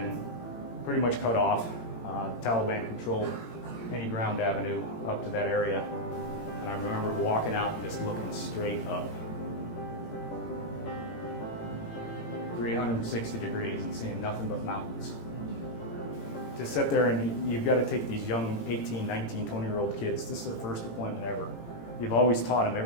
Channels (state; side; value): late; right; 18 ms